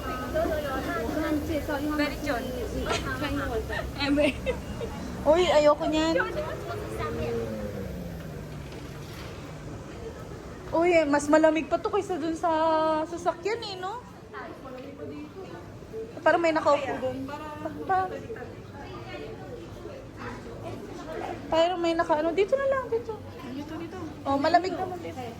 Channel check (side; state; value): both; identical; correlation 1.00